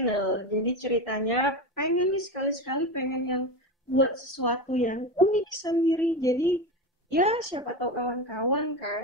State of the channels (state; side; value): normal; both; correlation 0.21